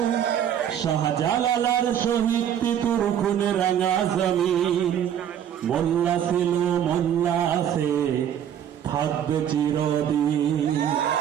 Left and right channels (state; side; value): quieter; left; 9.6 dB